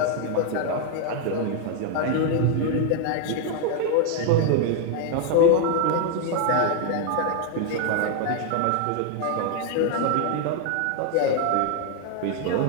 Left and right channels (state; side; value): different; both; correlation 0.00